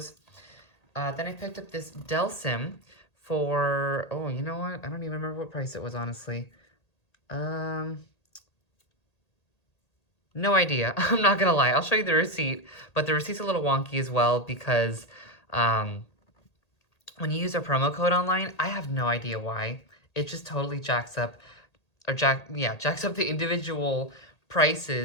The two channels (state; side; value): late; right; 1.8 ms